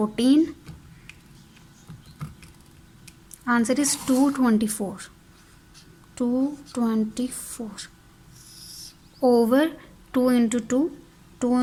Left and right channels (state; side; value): identical; both; correlation 1.00